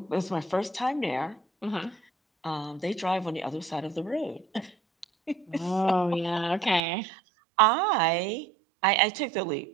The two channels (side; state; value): left; drops out; at 6.8 s